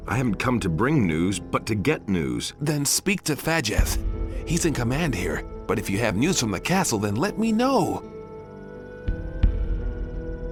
I haven't come to bring news, but to get news. Then speak to Fajeth. He's in command here, but if you have news from the castle, then let me know.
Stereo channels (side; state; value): both; identical; correlation 1.00